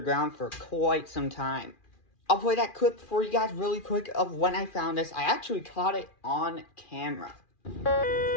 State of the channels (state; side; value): late; right; 2.4 ms